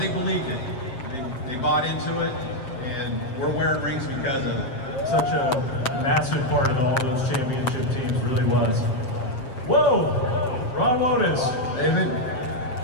believed it. They bought into it, and we're wearing rings because of it. such a massive part of all those championship teams, really was. Whoa! Ron Lotus. David?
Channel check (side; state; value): right; late; 7.6 ms